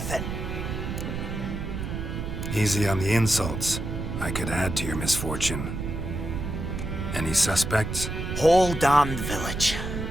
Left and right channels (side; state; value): right; noise; rumble, 4 dB below the sound